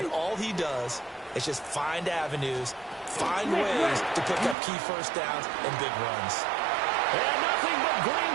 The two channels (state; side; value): drops out; left; at 4.5 s